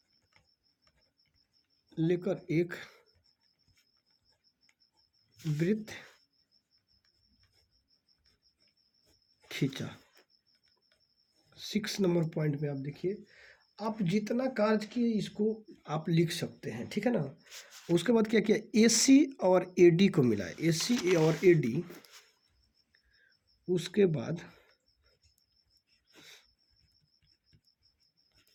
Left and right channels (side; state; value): both; identical; correlation 1.00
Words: एक वृत्त खींचा। 6 नंबर पॉइंट में आप देखिए, आप जितना कार्य किए इसको आप लिख सकते हैं, ठीक है ना। उसके बाद क्या किया, ए सी और ए डी को मिलाया, ए सी और ए डी, उसके बाद